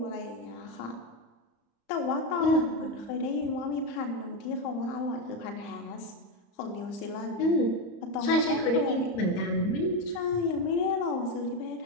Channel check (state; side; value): late; right; 35 ms